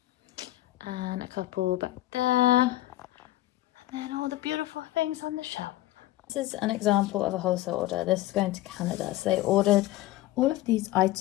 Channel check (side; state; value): right; quieter; 15.9 dB